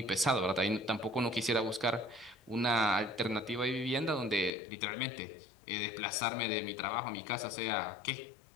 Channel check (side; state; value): right; drops out; at 4.5 s